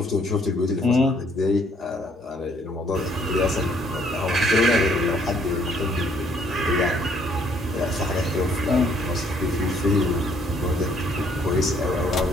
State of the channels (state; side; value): normal; both; correlation 0.65